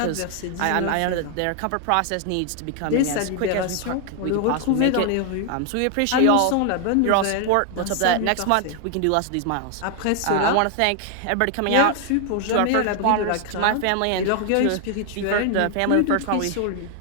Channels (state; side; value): different; both; correlation 0.00